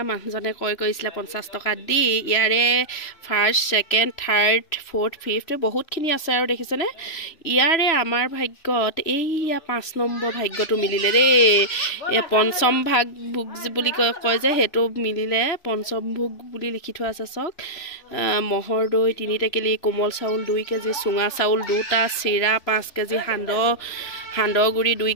মানুহজনে কৈছিলে 50 টকা দি ইয়াৰে first second third fourth fifth বহুতখিনি আছে আৰু দেখিছেনে ইয়াৰে আমাৰ ভাগ্যত এইয়া 5 নম্বৰ ভাগ্যটো মিলিলে দেই এই পঞ্চম ভাগ ভোগ বুলি কয় যে সেইটো মিলিলে পঞ্চম ভোগ বুলি লিখি থোৱা আছে চাওক মহৰ দৈ 3 টেকেলি কোমল চাউল 2 কেজি চুঙা চাউল 2টা চিৰা 5 কেজি সান্দহগুৰি 2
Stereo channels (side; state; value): right; late; 3.1 ms